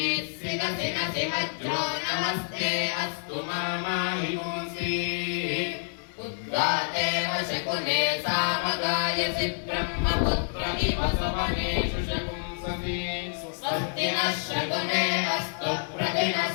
सिरसि नसि वज्रो नमस्ते अस्तु मामाहिपुंसे उद्गातेव शकुने सामगायसि ब्रह्मपुत्रमिव सवनेषु शकुंसति स्वस्ति नः शकुने अस्तु प्रतिनः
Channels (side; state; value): right; silent; digital silence